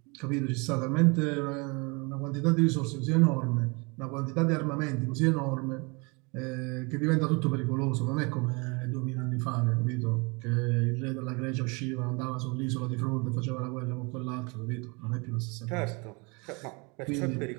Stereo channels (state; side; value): quieter; left; 29.4 dB